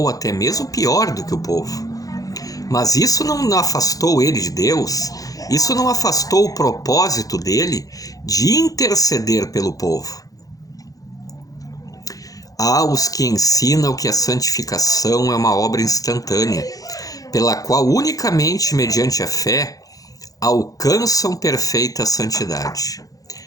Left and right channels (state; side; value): late; right; 0.17 ms